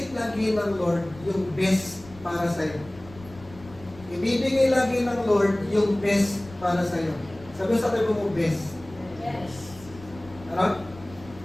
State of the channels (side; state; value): left; noise; rumble, 20 dB below the sound